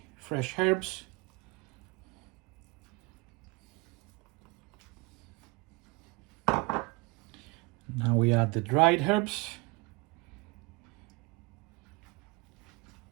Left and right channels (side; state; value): left; quieter; 26.0 dB